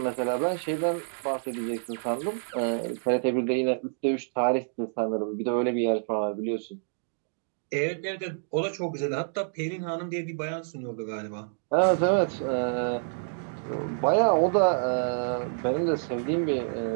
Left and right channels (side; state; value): left; silent; digital silence